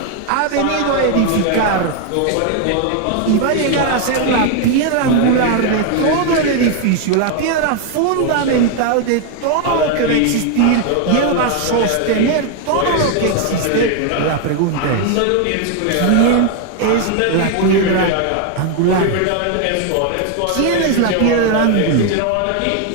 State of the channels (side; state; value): both; different; correlation 0.01